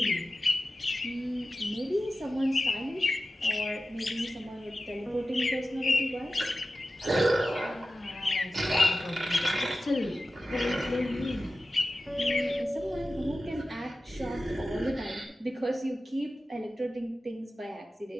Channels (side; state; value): both; normal; correlation 0.94